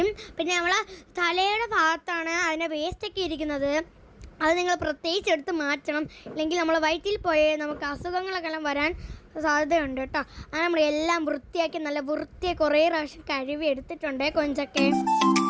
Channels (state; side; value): identical; both; correlation 1.00